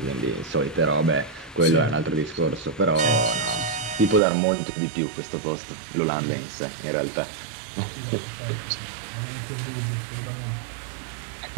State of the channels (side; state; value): left; drops out; at 4.2 s